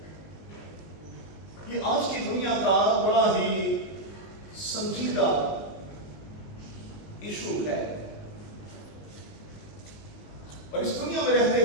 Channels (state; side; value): late; right; 19 ms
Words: یہ آج کی دنیا کا بڑا ہی سنجیدہ ایشو ہے، اور اس دنیا میں رہتے